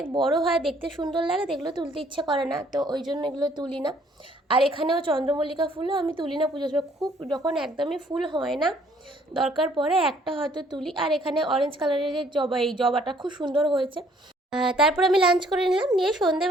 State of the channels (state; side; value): normal; both; correlation 0.62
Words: বড় হয়, দেখতে সুন্দর লাগে, এগুলো তুলতে ইচ্ছে করে না, তো ওই জন্য এগুলো তুলি না। আর এখানেও চন্দ্রমল্লিকা ফুলও আমি তুলি না পুজোর সময়, খুব যখন একদমই ফুল হয় না, দরকার পড়ে একটা হয়তো তুলি। আর এখানে অরেঞ্জ কালারের যে জবা, এই জবাটা খুব সুন্দর হয়েছে। তারপর আমি লাঞ্চ করে নিলাম, নিয়ে